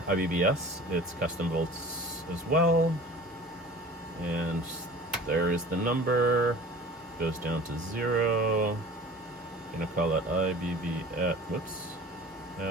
IBBS. It's custom volts as well. And there is the number. Goes down to 0. I'm gonna call it IBB at, whoops,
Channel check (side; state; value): both; normal; correlation 0.43